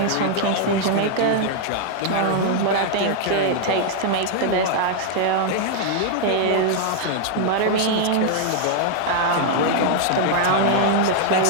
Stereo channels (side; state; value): both; different; correlation -0.01